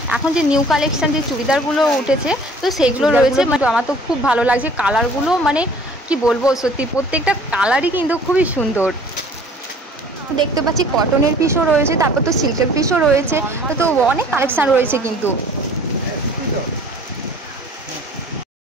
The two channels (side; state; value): both; normal; correlation 0.51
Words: এখন যে নিউ কালেকশন যে চুড়িদারগুলো উঠেছে, তো সেগুলো রয়েছে। আমার তো খুব ভালো লাগছে কালারগুলো, মানে কি বলবো, সত্যি প্রত্যেকটা কালারই কিন্তু খুবই সুন্দর। দেখতে পাচ্ছি কটনের পিসও রয়েছে, তারপর তো সিল্কের পিসও রয়েছে। তো অনেক কালেকশন রয়েছে কিন্তু।